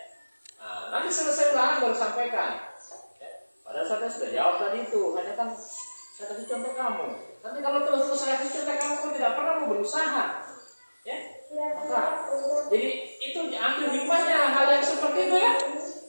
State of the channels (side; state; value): both; inverted; correlation -1.00